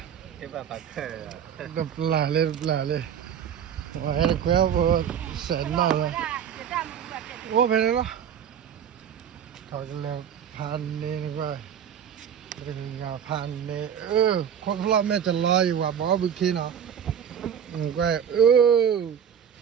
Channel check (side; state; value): left; quieter; 8.5 dB